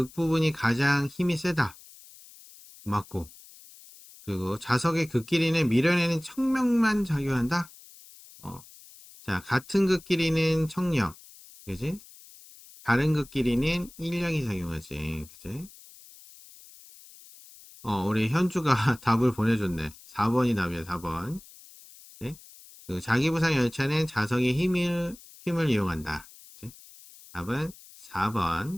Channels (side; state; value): left; noise; hiss, 21 dB below the sound